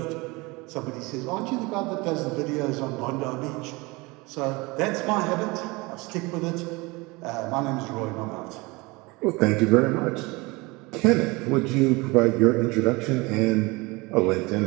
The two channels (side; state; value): left; quieter; 24.5 dB